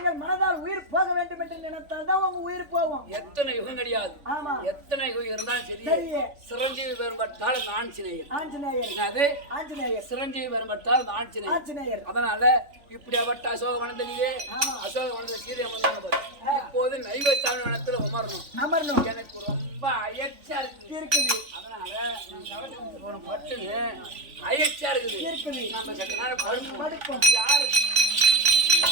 மனதால் உயிர் போக வேண்டும் என்று நினைத்தால் தான் உங்க உயிர் போகும். எத்தனை யுகம் கிடையாது. எத்தனை யுகம் இருந்தாலும் சரி சிரஞ்சீவி பெரும்பட்டால் ஆஞ்சநேயர் சிரஞ்சீவி பெரும்பட்டால் ஆஞ்சநேயர். அதனால இப்படியாப்பட்ட அசோக வனத்திலே அசோக வனத்தில் சீதை அமர்ந்தாங்க பாரு. இப்போது நைவஸ்தான வனத்துல அமரணும். எனக்கு ரொம்ப அயற்சியா இருக்குது. அதனால பட்டுன்னு அயற்சியா இருக்குது. நம்ம சற்று நேரம் படுப்போம். யாரு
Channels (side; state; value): left; late; 3.4 ms